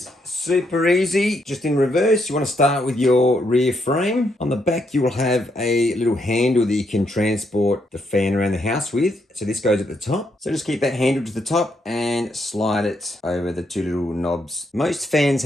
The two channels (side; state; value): both; normal; correlation 0.77